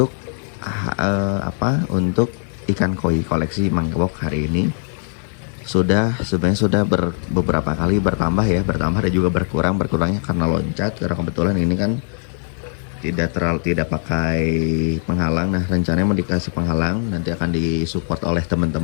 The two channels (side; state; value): right; silent; 58 dB below the other